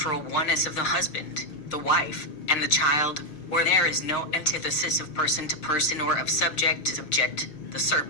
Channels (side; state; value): right; late; 6.5 ms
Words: oneness of the husband, the wife, and the child, where there is no antithesis of person to person or of subject to subject, the